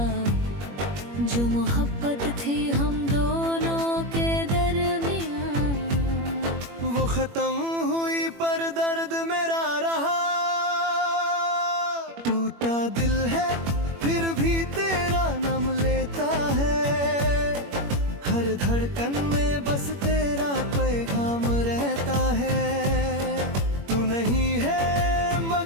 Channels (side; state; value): left; late; 21 ms